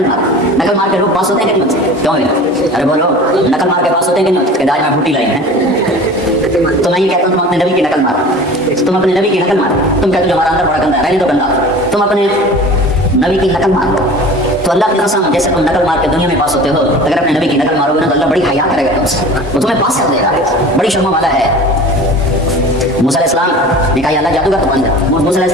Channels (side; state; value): both; normal; correlation 0.39